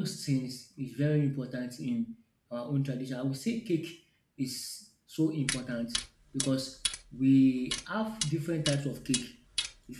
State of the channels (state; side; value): identical; both; correlation 1.00